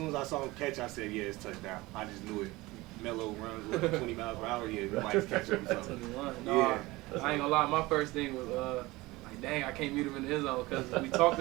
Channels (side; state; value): left; quieter; 20.8 dB